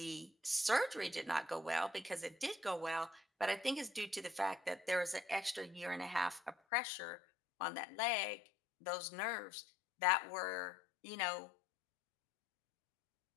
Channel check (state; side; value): drops out; right; at 6.6 s